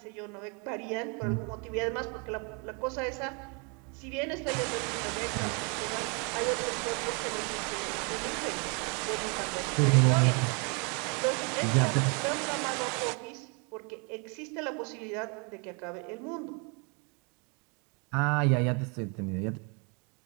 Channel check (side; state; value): left; quieter; 34.1 dB